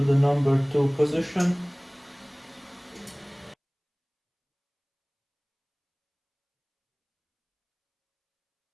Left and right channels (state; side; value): identical; both; correlation 1.00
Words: number 2 position.